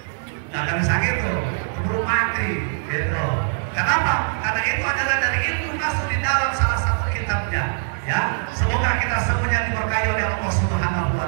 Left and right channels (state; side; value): silent; left; 56 dB below the other